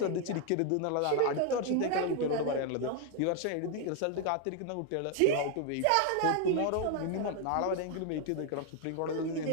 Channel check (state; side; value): different; both; correlation 0.01